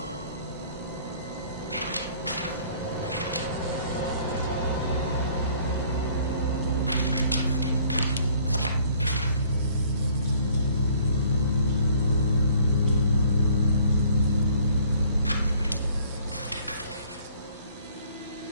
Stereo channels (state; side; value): inverted; both; correlation -0.56